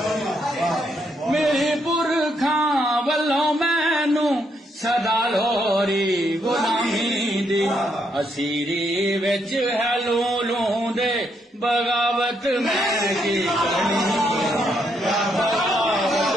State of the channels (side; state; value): both; normal; correlation 0.76